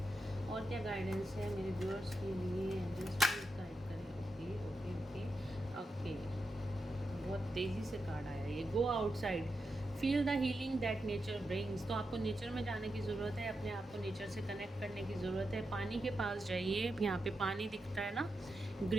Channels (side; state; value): both; normal; correlation 0.87